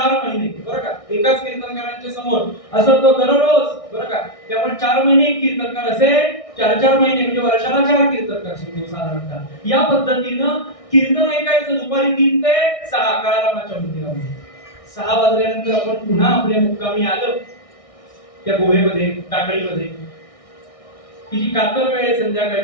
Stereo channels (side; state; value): right; late; 1.6 ms